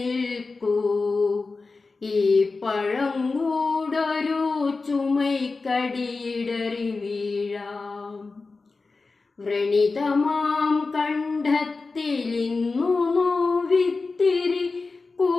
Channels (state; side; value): quieter; right; 4.0 dB